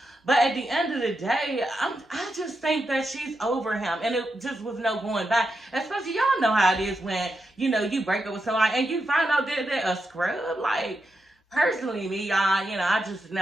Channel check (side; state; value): both; normal; correlation 0.86